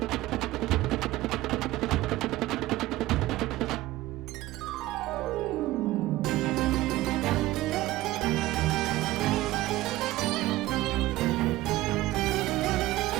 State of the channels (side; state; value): left; quieter; 16.9 dB